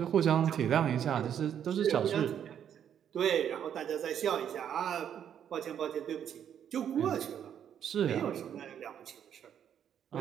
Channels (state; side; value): quieter; left; 9.1 dB